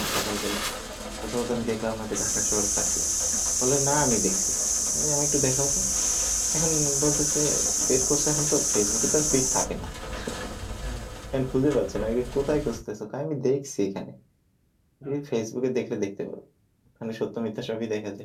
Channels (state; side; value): identical; both; correlation 1.00